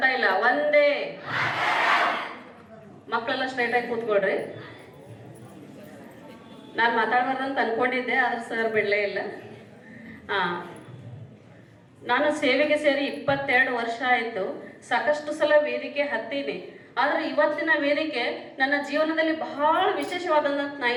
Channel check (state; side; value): identical; both; correlation 1.00